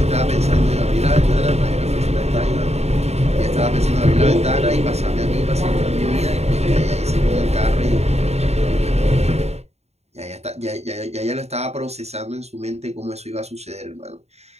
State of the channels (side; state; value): left; late; 0.31 ms